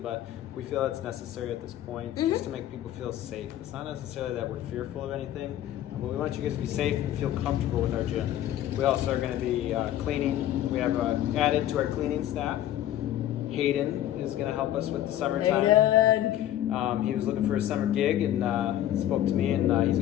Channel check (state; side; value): quieter; right; 12.4 dB